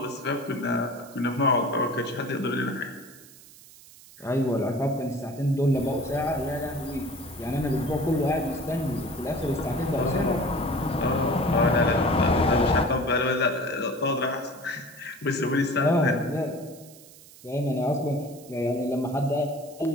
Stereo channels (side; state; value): right; noise; hiss, 21 dB below the sound